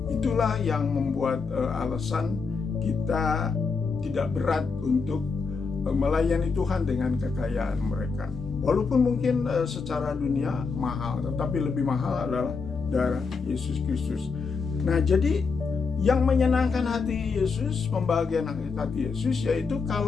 Itulah yang membuat alasan kita tidak berat untuk melayani Tuhan dengan kekayaan mereka. Walaupun mungkin secara dunia mahal, tetapi lebih mahal adalah darah Yesus Kristus. Nah, jadi yang menyenangkan hati Yesus, membahagiakan hati Yesus, yaitu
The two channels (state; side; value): quieter; right; 4.9 dB